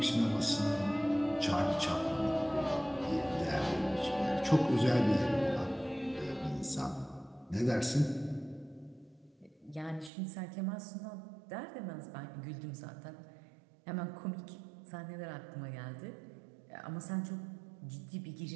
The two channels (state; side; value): drops out; left; at 10.1 s